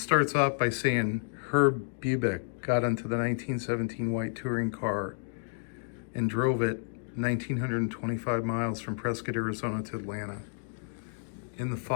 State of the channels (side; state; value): right; silent; digital silence